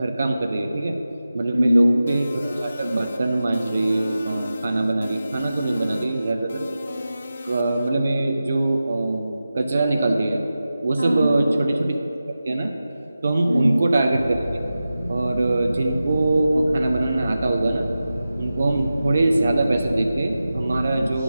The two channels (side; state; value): both; inverted; correlation -0.93